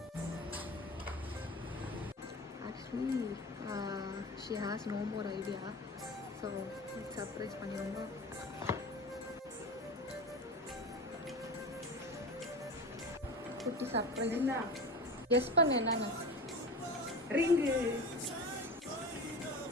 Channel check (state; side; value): normal; both; correlation 0.31